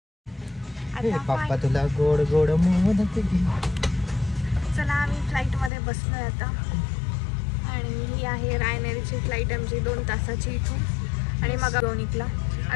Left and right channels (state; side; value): drops out; right; at 5.7 s